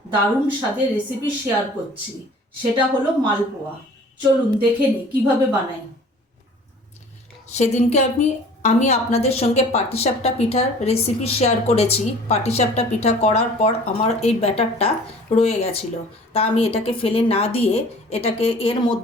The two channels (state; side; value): normal; both; correlation 0.48